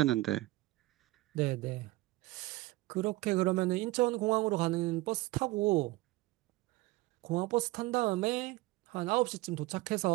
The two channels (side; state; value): left; quieter; 19.9 dB